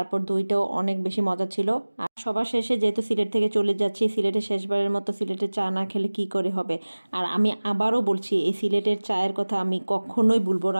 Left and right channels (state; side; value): inverted; both; correlation -1.00